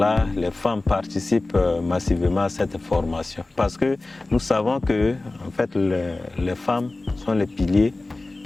les femmes participent massivement à cette formation. Parce que nous savons que en fait, les femmes sont les piliers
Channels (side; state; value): right; quieter; 3.1 dB